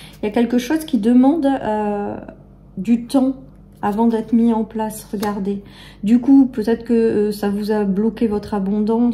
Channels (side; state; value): both; identical; correlation 1.00